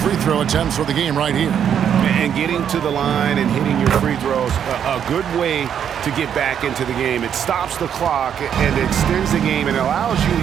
free throw attempts for the game right here. And getting to the line and hitting your free throws, a good way to get back into the game. It stops the clock and extends the game and allows you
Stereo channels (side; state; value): left; quieter; 8.7 dB